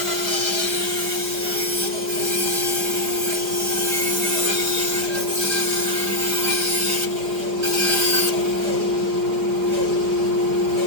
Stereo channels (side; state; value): left; late; 5.1 ms